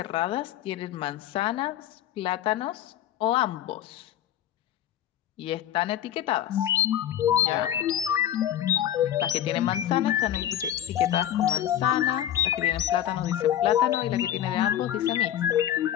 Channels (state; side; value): quieter; right; 11.4 dB